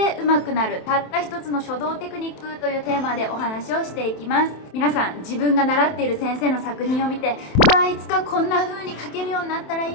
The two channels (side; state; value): right; late; 27 ms